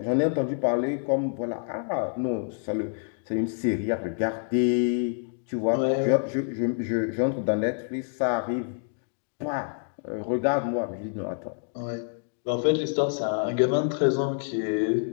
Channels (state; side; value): silent; right; 60 dB below the other